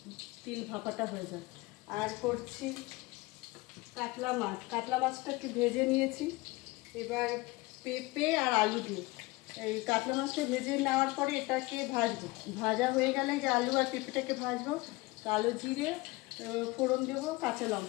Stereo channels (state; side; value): quieter; right; 21.9 dB